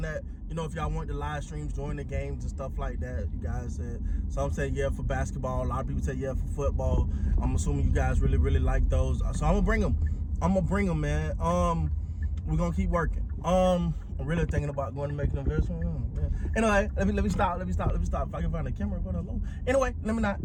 that, if y'all want the live streams during the games and stuff like that. You guys said, some say yeah for basketball. A lot of people say yeah for football. I'm assuming you guys really like those. So I'm gonna bring them. Man. We're gonna keep working. I'm really thinking about going to make an investment. Anyway, let me stop. If I can find a camera, go down low. Anyway, let me not.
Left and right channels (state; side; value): identical; both; correlation 1.00